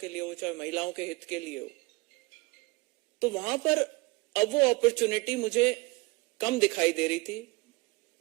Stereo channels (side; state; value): left; quieter; 24.2 dB